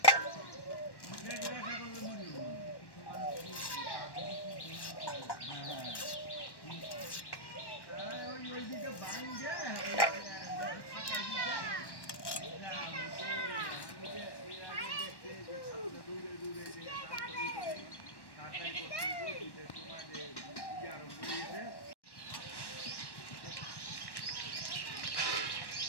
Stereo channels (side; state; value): right; late; 1.1 ms